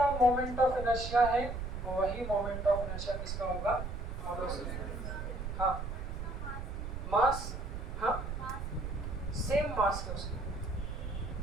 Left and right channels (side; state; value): right; noise; rumble, 5 dB below the sound